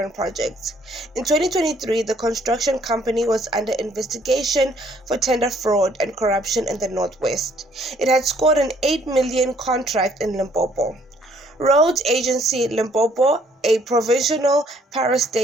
projects. In 2023, the construction company was under investigation for tender fraud and corruption in the Northwest. It had scored an 8 million contract in Limpopo. Roads Agency Limpopo, a provisional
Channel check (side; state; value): both; normal; correlation 0.64